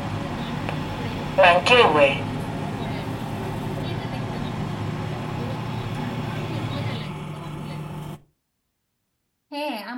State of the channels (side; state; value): both; identical; correlation 1.00